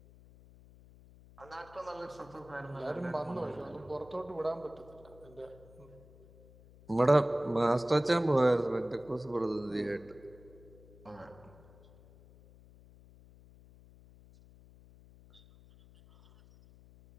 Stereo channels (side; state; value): left; noise; hum, 23 dB below the sound